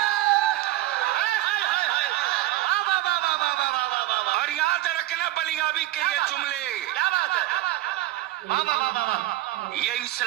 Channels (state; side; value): quieter; left; 16.0 dB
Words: और याद रखना बलियाबी के ये जुमले, क्या बात है। ये